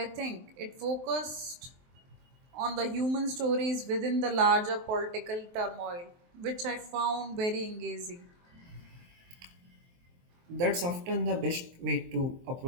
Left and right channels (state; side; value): late; left; 23 ms